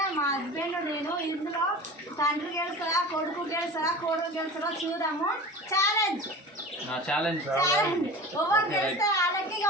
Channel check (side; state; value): both; normal; correlation 0.35